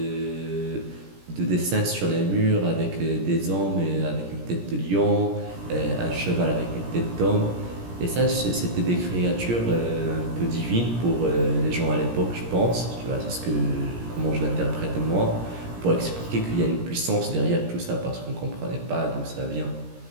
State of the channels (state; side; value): late; left; 17 ms